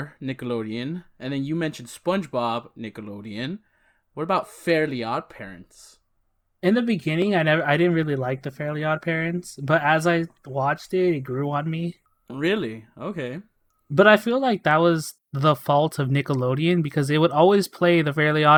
Nickelodeon, and then you mentioned SpongeBob Nickelodeon. What about Fairly Odd Parents? In the beginning, I didn't really like the Fairly Odd Parents, but as I watched it, it grew on me. Really? Okay. But I feel like that was the fault of Nickelodeon because they would always play the Fairly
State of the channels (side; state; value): both; identical; correlation 1.00